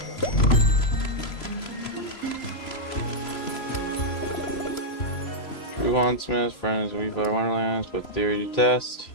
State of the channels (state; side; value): late; right; 3.0 ms